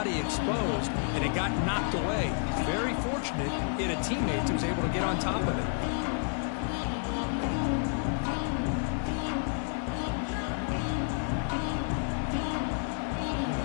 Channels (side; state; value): right; silent; 58 dB below the other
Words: exposed, and it got knocked away. He's very fortunate he had a teammate who was able to get on top of it.